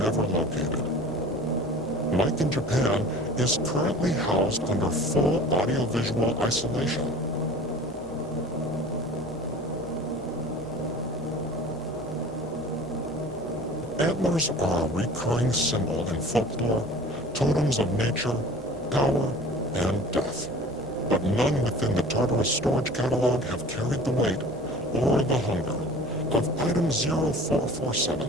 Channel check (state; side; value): normal; both; correlation 0.42